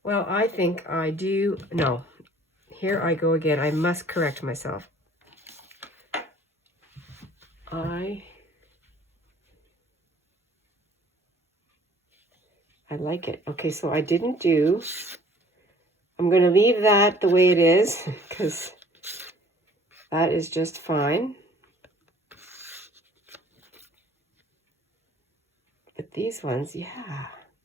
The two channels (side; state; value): both; normal; correlation 0.54